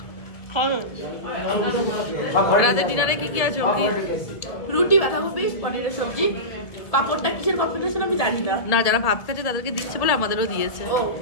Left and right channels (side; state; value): right; late; 1.7 ms